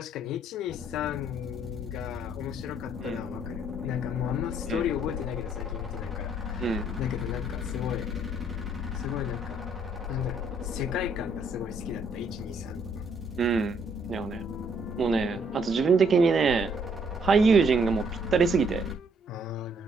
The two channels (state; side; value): normal; both; correlation 0.67